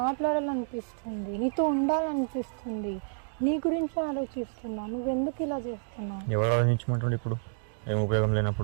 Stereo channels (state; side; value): silent; left; digital silence